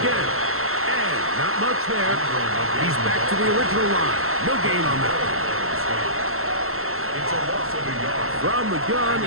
And not much there. He's back to the original line. No gain on that. It's a loss of a yard. From the gun,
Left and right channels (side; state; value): left; late; 0.62 ms